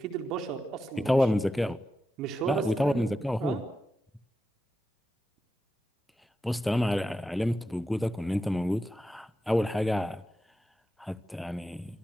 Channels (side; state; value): both; normal; correlation 0.90